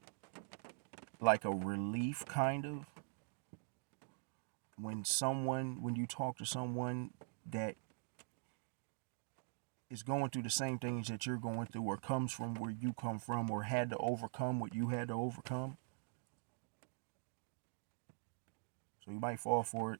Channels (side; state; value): left; silent; digital silence